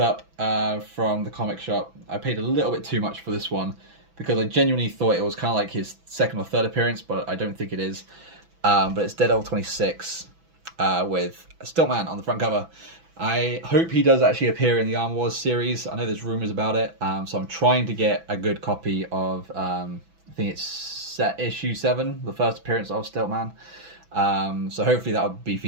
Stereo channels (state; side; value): late; left; 6.0 ms